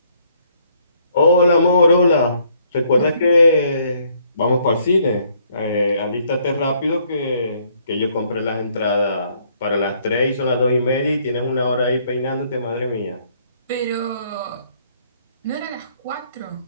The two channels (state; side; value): inverted; both; correlation -0.66